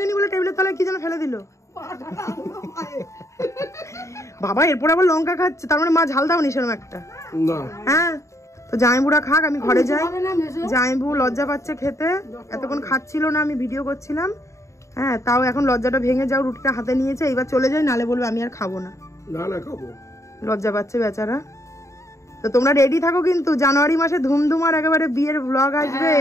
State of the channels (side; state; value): right; late; 0.14 ms